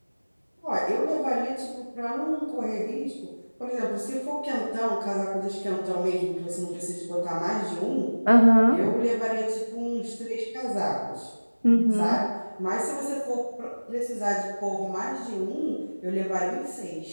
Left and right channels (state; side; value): inverted; both; correlation -1.00